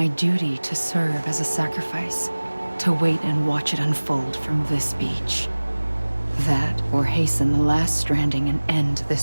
duty to serve as a sacrifice, to wait and watch it unfold from this beach. That, or hasten the last stranding and end this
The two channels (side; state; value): both; inverted; correlation -1.00